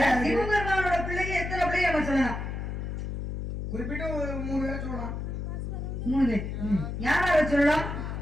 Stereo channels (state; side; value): noise; left; hum, 5 dB below the sound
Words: சிவபெருமானோட பிள்ளைங்க எத்தனை பிள்ளைங்க நம்ம சொல்லலாம்? குறிப்பிட்டு 3 பேரை சொல்லலாம். 3 பேர். யாரை சொல்லலாம்?